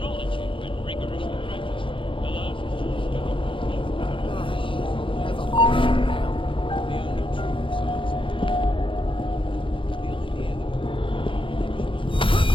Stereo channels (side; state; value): right; late; 0.25 ms